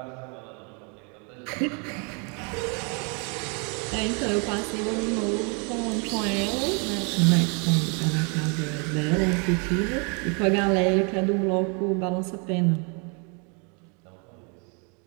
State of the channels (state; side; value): quieter; left; 35.2 dB